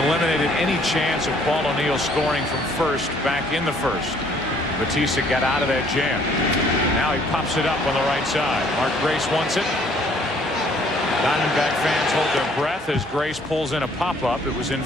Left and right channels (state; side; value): normal; both; correlation 0.61